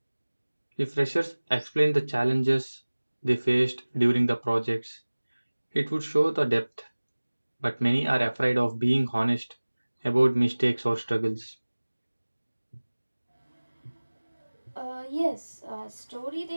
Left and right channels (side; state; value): both; inverted; correlation -1.00